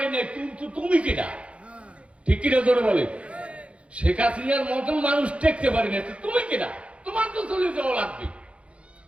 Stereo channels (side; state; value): left; late; 0.061 ms